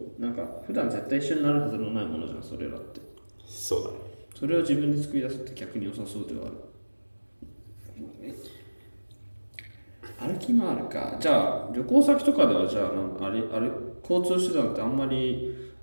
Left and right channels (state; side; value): inverted; both; correlation -1.00